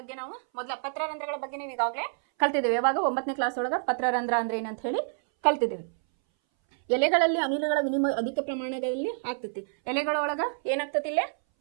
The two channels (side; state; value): left; silent; 59 dB below the other